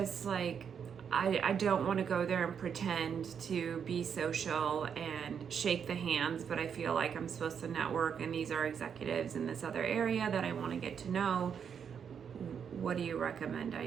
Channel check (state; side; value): quieter; left; 7.4 dB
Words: like, I don't want to go there and pretend to be social and shake the hands, but I feel like I'm supposed to network, and these are executives in this other area that I want to get to know. What do you recommend I